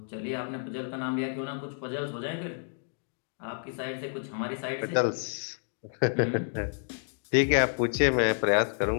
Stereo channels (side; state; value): right; silent; 58 dB below the other